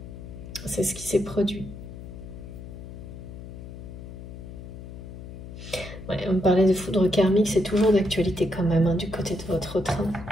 C'est ce qui s'est produit. Ouais, on me parlait de foudre karmique, c'est toujours d'actualité quand même, hein, du côté de votre train.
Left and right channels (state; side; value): noise; left; hum, 12 dB below the sound